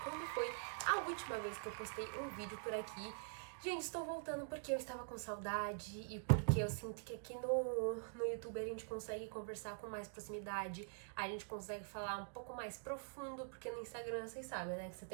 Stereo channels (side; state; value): left; silent; digital silence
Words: quando foi a última vez que eu postei um vídeo por aqui. Gente, estou voltando porque eu estava com saudade e porque eu sinto que aqui no YouTube a gente consegue conversar com mais proximidade, a gente consegue falar um pouco mais profundo, porque no Instagram vocês sabem, né, que você